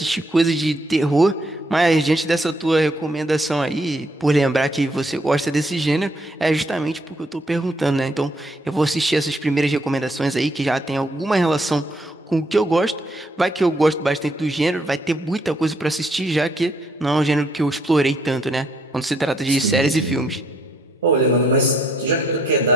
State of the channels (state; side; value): normal; both; correlation 0.70